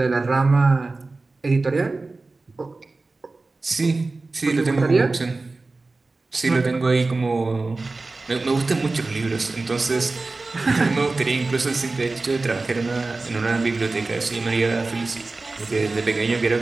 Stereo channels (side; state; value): left; quieter; 3.5 dB